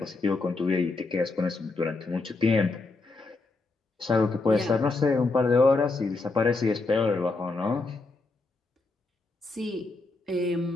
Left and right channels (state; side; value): quieter; right; 3.5 dB